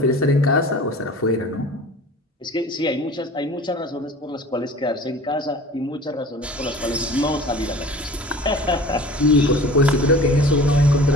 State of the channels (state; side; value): normal; both; correlation 0.42